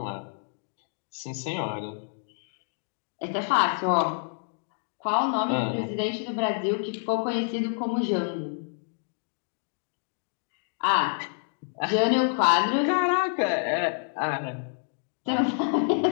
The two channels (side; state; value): right; silent; digital silence